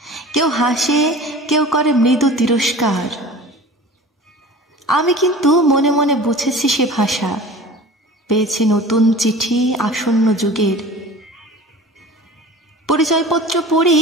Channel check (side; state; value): both; normal; correlation 0.40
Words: কেউ হাসে, কেউ করে মৃদু তিরস্কার। আমি কিন্তু মনে মনে বুঝেছি সে ভাষা, পেয়েছি নতুন চিঠি আসন্ন যুগের। পরিচয়পত্র পড়ি